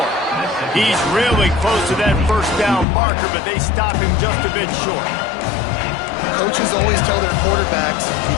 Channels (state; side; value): drops out; right; at 2.9 s